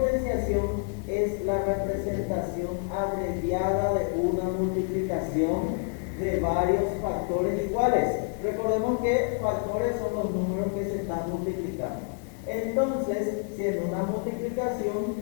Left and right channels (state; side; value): quieter; right; 39.1 dB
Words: es la representación abreviada de una multiplicación de varios factores iguales. Recordemos que factores son los números que se están multiplicando. Entonces, si en una multiplicación